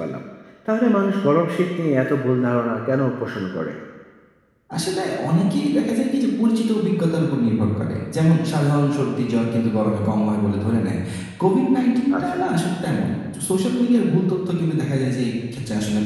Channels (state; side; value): identical; both; correlation 1.00